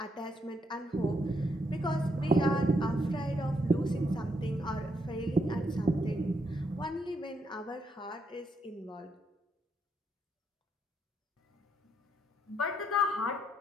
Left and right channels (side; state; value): both; normal; correlation 0.76